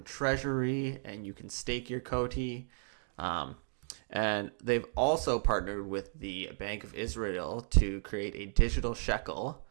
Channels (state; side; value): silent; left; 55 dB below the other